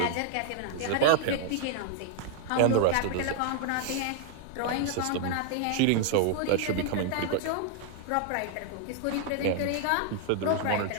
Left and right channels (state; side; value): different; both; correlation 0.00